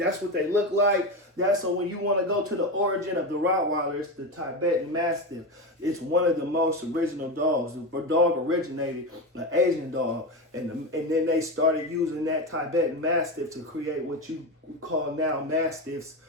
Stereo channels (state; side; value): normal; both; correlation 0.18